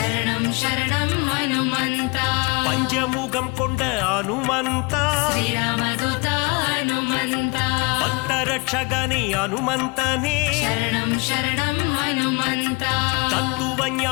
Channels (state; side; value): quieter; right; 28.9 dB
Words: ಶರಣಂ ಹನುಮಂತ பஞ்சமுகம் கொண்ட ஹனுமந்தா ಶ್ರೀರಾಮದೂತ ಹನುಮಂತ பக்தரட்சகனே ஹனுமந்தனே ಶರಣಂ ಶರಣಂ ಹನುಮಂತ தத்துவ